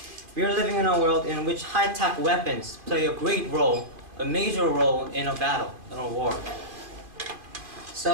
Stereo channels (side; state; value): left; late; 2.4 ms